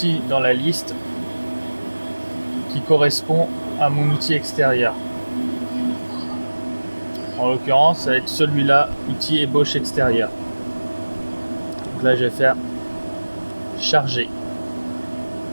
dans la liste qui correspond à mon outil extérieur. En l'occurrence, ça va être celui-là, outil ébauche extérieur. Donc là, je vais faire charger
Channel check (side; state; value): both; inverted; correlation -1.00